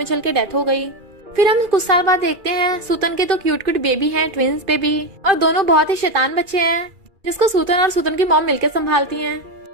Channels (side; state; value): left; late; 2.4 ms